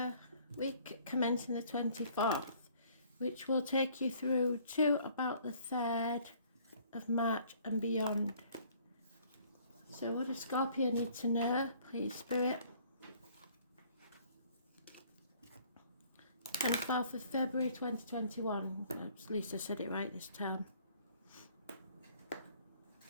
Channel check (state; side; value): inverted; both; correlation -0.58